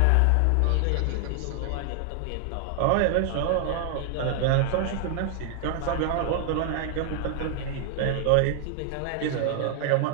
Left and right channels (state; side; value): different; both; correlation 0.00